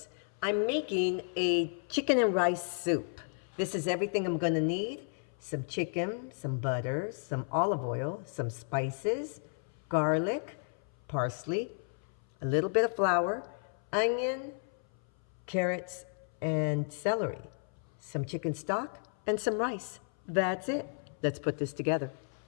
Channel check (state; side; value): silent; right; 56 dB below the other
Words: I'm making a chicken and rice soup. This is everything I'm gonna need. Some chicken, some butter, some olive oil, some spices, garlic, parsley, a little bit of flour, onion, carrots, and celery, some chicken stock, and some rice. That's it. Let's put this together.